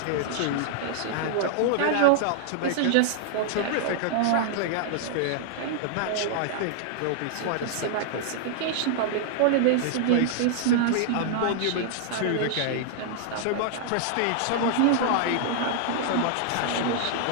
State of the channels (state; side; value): different; both; correlation -0.01